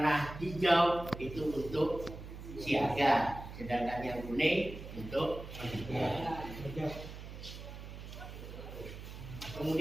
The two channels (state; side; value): noise; right; hum, 11 dB below the sound